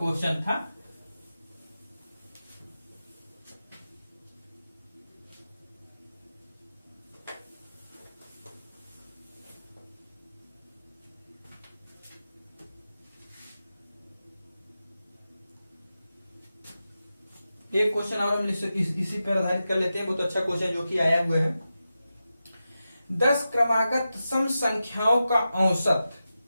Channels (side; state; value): both; inverted; correlation -0.91